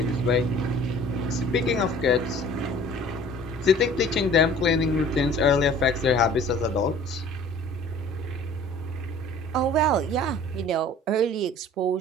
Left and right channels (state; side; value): normal; both; correlation 0.48